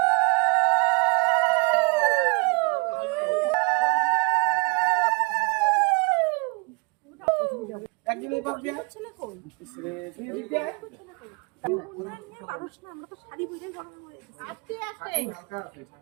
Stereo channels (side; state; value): left; quieter; 30.6 dB